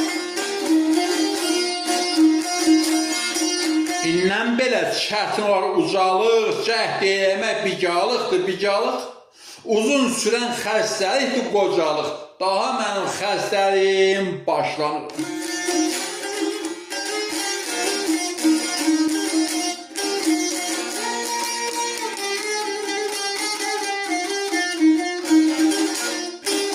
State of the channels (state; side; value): identical; both; correlation 1.00